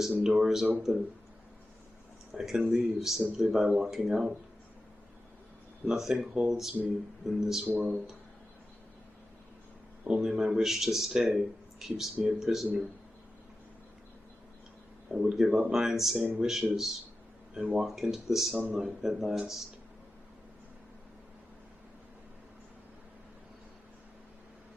door is open. I can leave simply by walking out. Nothing holds me in this world. Only my wish to stay keeps me a prisoner. I would give up my insane wishes and walk into the sunlight at last.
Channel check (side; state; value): both; normal; correlation 0.93